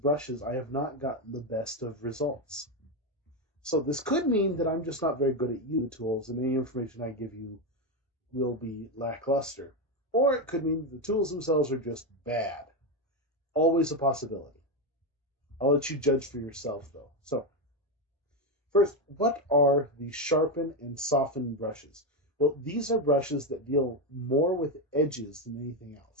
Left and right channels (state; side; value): normal; both; correlation 0.09